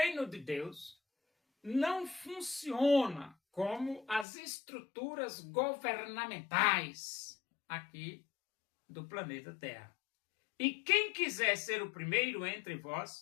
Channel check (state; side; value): drops out; right; at 4.2 s